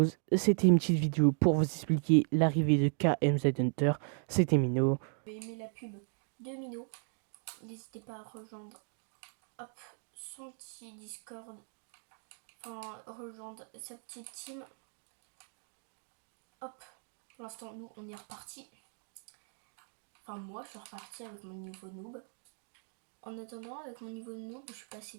C'était une petite vidéo pour vous expliquer l'arrivée de KMZ Hunter. C'était Mino. Vous avez aimé la pub de Mino, n'hésitez pas à rejoindre son petit Discord, enfin rejoindre sa petite team. Hop, pour l'instant nous on est reparti. Enfin moi je suis reparti avec mon niveau noob. En attendant, avec mon niveau noob, je suis passé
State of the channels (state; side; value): silent; left; 54 dB below the other